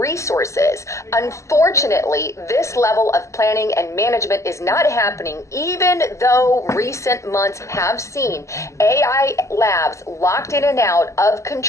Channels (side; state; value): right; late; 0.14 ms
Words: resources. Unfortunately, this level of planning and management is not happening, even though recent months have seen AI labs locked in and out of